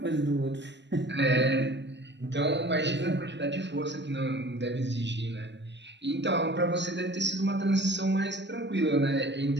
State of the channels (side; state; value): left; late; 0.52 ms